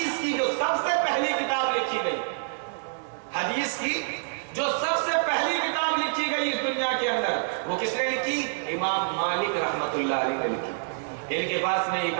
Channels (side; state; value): left; silent; digital silence